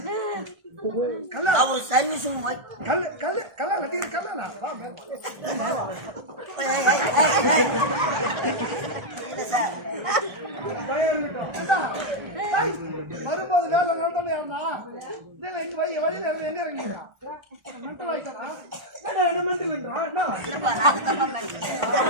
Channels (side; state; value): left; late; 1.3 ms